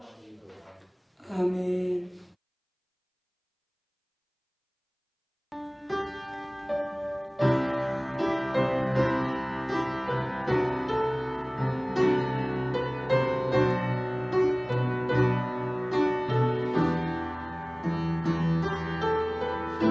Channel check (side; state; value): both; identical; correlation 1.00